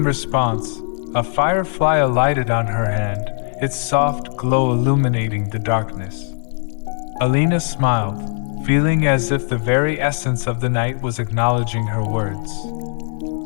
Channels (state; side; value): silent; right; 66 dB below the other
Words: response, a firefly alighted on her hand, its soft glow illuminating the darkness. Alina smiled, feeling as if the very essence of the night was acknowledging her words.